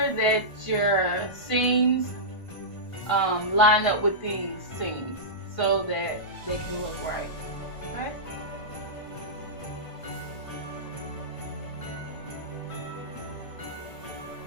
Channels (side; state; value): right; late; 1.5 ms